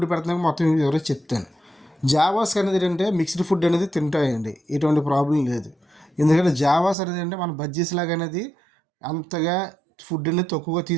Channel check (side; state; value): left; drops out; at 7.0 s